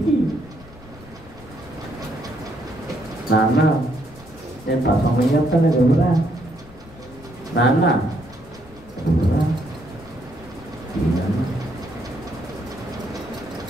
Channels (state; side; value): noise; left; rumble, 21 dB below the sound